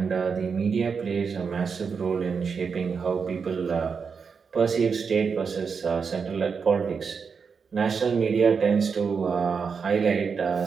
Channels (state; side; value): quieter; left; 5.8 dB